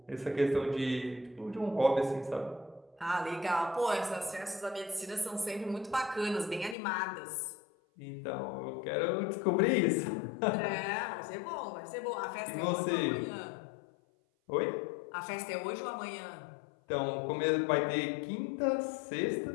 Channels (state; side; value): drops out; right; at 6.8 s